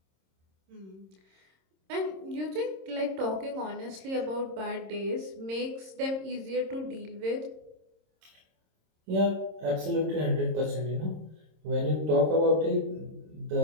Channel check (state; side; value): late; left; 26 ms